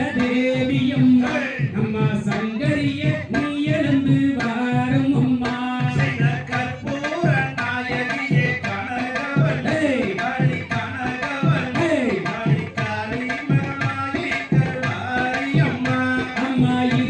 தேவியம்மா நம்ம சங்கரிய நீ எழுந்து வாரும் அம்மா செய்த கற்பூர நாயகியே கனகவல்லே காளி கனகவல்லே காளி காளி மகமாயி கருமாரியம்மா அம்மா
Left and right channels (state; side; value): identical; both; correlation 1.00